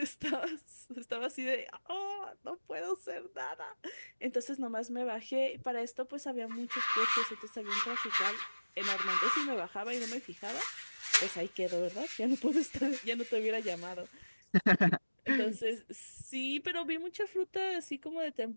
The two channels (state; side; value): inverted; both; correlation -1.00